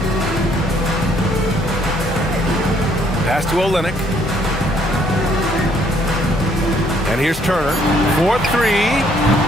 Pass to Olynyk. And here's Turner. 4-3.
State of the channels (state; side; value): normal; both; correlation 0.66